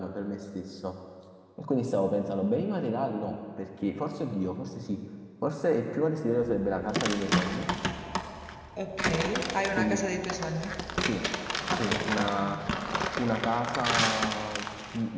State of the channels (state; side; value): identical; both; correlation 1.00